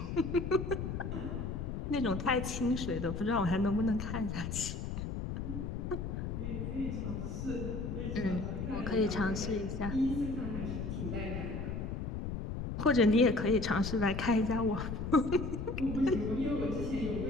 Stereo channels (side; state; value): left; noise; rumble, 4 dB below the sound